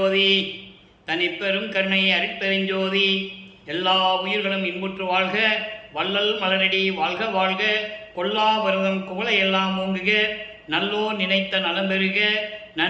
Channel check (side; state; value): both; identical; correlation 1.00